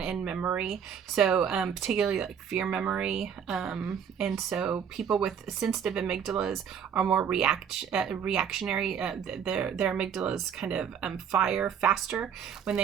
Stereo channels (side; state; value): left; quieter; 7.8 dB